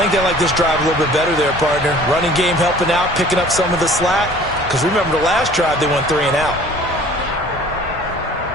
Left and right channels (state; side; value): normal; both; correlation 0.49